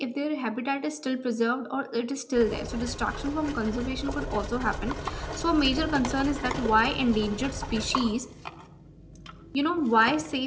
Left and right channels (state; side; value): identical; both; correlation 1.00